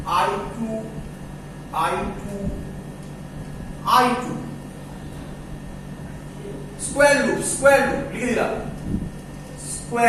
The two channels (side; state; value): both; identical; correlation 1.00